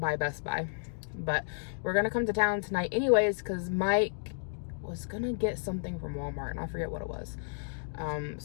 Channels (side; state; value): right; silent; digital silence